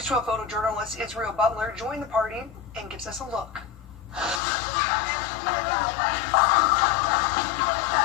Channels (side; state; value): right; drops out; at 4.4 s